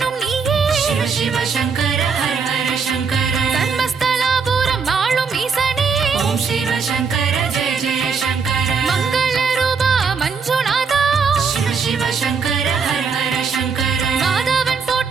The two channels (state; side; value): quieter; left; 5.5 dB